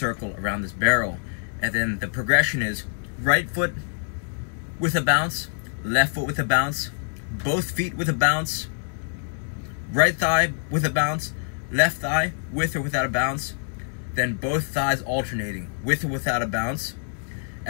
around this barrel. And then the progression is right foot with a bounce, left foot with a bounce, both feet with a bounce, right thigh with a bounce, left thigh with or without a bounce, then both thighs alternating with or without a bounce,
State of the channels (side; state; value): right; silent; digital silence